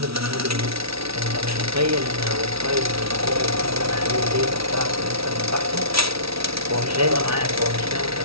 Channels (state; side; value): late; left; 0.76 ms